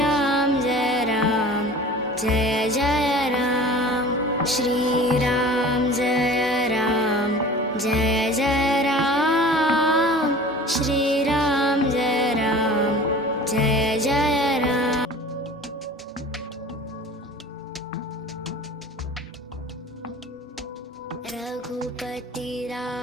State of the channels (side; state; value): both; normal; correlation 0.41